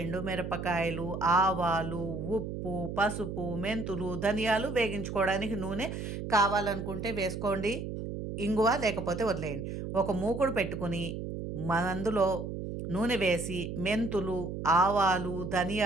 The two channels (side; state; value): right; noise; hum, 6 dB below the sound